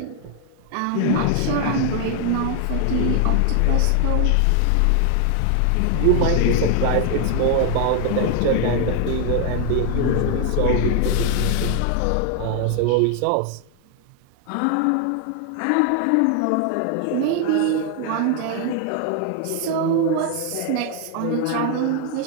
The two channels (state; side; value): different; both; correlation 0.00